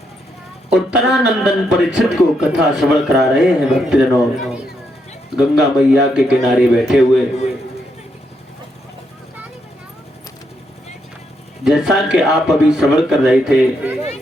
उत्तरानंदन परीक्षित को कथा श्रवण करा रहे हैं। भक्तजनों गंगा मैया के किनारे बैठे हुए, जैसा कि आप अभी श्रवण कर रहे थे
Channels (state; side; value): normal; both; correlation 0.79